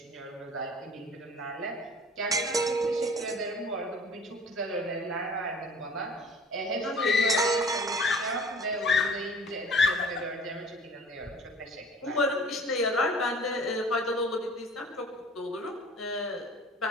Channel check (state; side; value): normal; both; correlation 0.48